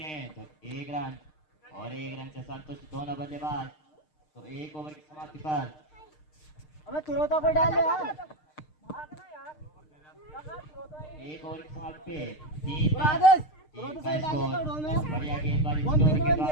हैं तो एक रन और एक रन से संतुष्ट दोनों बल्लेबाज तो एक ओवर की समाप्ति पर हमें तुरंत को डाल यार एक ओवर की समाप्ति पे तीन का स्कोर बढ़िया गेंदबाजी के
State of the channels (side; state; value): right; late; 6.6 ms